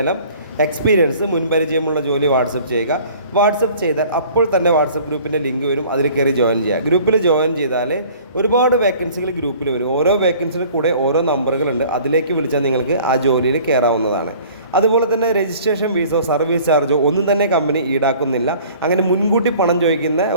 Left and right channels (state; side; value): inverted; both; correlation -0.50